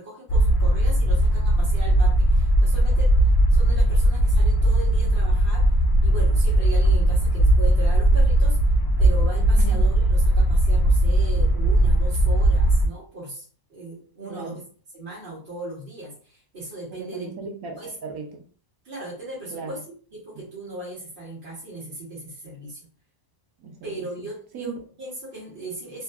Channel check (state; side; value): late; left; 1.0 ms